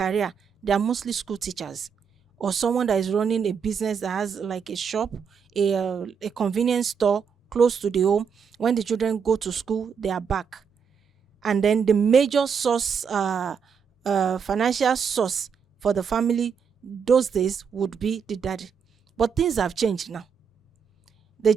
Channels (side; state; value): left; quieter; 6.6 dB